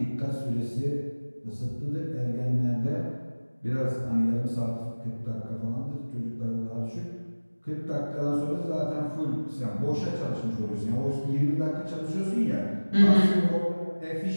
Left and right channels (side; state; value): both; inverted; correlation -1.00